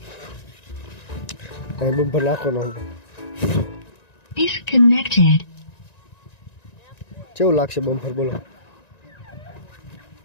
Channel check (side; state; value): right; late; 1.9 ms